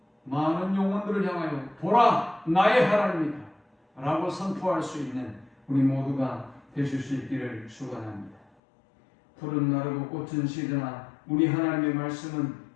많은 영혼들을 향하여 보라, 나의 하나님이다 라고 선포할 수 있는 우리 모두가 되실 수 있기를 축원합니다. 푸른 나르고 꽃은 시드나 우리 하나님의 말씀은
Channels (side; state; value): right; drops out; at 8.5 s